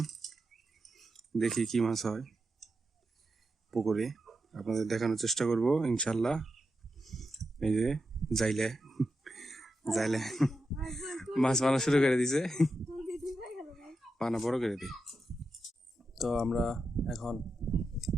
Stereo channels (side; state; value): both; normal; correlation 0.88